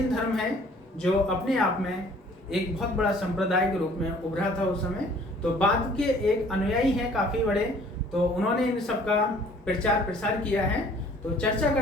धर्म है जो अपने आप में एक बहुत बड़ा संप्रदाय के रूप में उभरा था उस समय। तो बाद के एक अनुयायी हैं काफी बड़े, तो उन्होंने इन सबका प्रचार प्रसार किया है। तो चर्चा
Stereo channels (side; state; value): both; normal; correlation 0.55